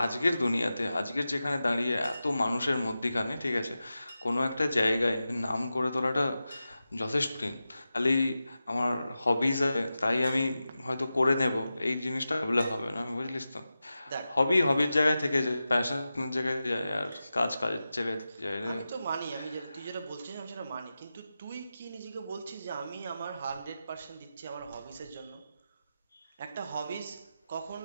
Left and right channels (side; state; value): both; inverted; correlation -0.93